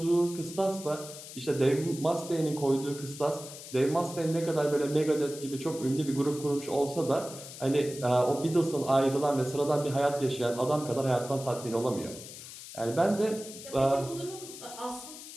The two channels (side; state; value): left; noise; hiss, 13 dB below the sound